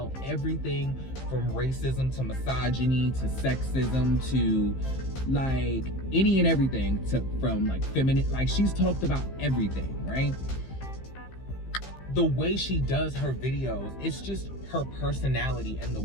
everything from racism to misogyny to sexism to like any and everything, from like feminine, like she's talked about everything, right? The way she does her videos, it's just her personality, and the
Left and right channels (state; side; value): late; right; 15 ms